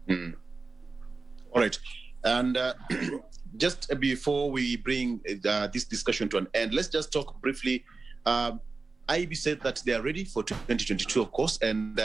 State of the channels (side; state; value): left; quieter; 3.9 dB